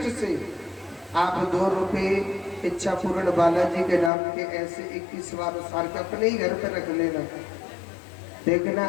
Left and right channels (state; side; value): drops out; right; at 4.1 s